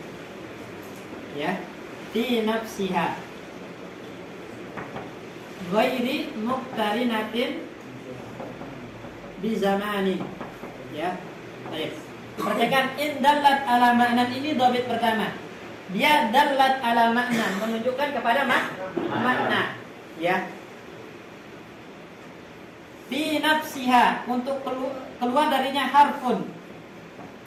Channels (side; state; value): both; identical; correlation 1.00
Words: Ya. Fi nafsiha. Ghairi muqtarinatin bi zamani. Ya, baik. Perhatikan in dallat ala ma'nan ini dhabit pertama. Dia dallat ala ma'nan menunjukkan kepada makna. Ya. Fi nafsiha untuk keluar darinya harfun.